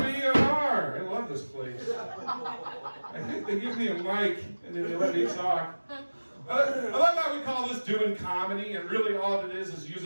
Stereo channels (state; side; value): inverted; both; correlation -1.00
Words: are. I love this place. I think they give me a mic and then they let me talk. I love how we call this doing comedy, and really all it is